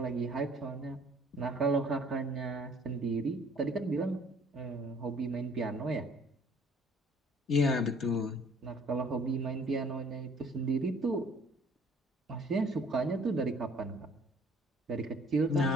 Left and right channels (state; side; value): normal; both; correlation 0.56